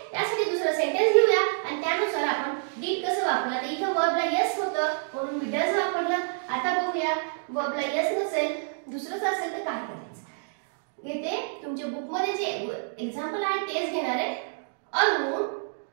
यासाठी दुसरं सेंटेन्स घेऊया आणि त्यानुसार आपण डीड कसं वापरलं. तर इथं वर्बला यस होतं म्हणून मी डज वापरलं. आता बघूया वर्बला यस नसेल, दुसरंच असेल तर काय करायचं. इथे तुमच्या बुक मध्ये जे एक्झाम्पल आहे तेच घेणार आहे. Arun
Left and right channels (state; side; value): silent; left; digital silence